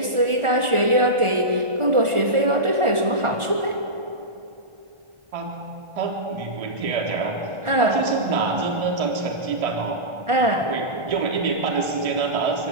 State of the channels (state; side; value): late; left; 1.4 ms